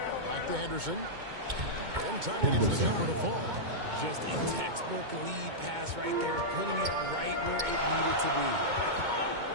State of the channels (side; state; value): left; late; 2.2 ms